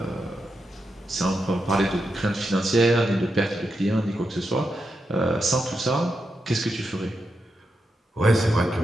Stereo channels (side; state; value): both; normal; correlation 0.86